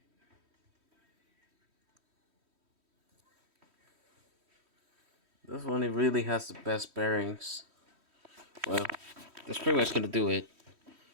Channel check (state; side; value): late; left; 3.1 ms